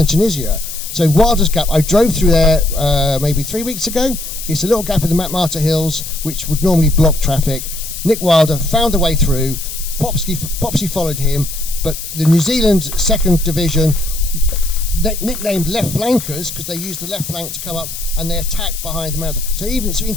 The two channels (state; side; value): noise; left; hiss, 9 dB below the sound